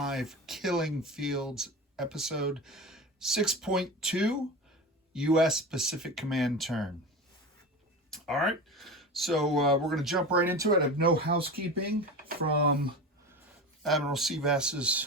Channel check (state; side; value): normal; both; correlation 0.28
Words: Killing Fields episode 6.2 U.S. Pacific Command turn. All right, so we're going to jump right into it. I have no housekeeping from Admiral